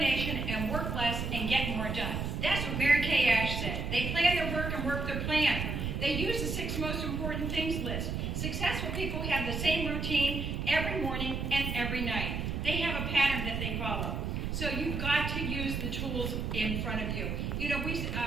and work less and get more done. That's what Mary Kay Ash said. They plan their work and work their plan. They use the 6 most important things list. Successful people have the same routine every morning and every night. They have a pattern that they follow. So you've got to use the tools in front of you. You know,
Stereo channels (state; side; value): noise; right; rumble, 2 dB below the sound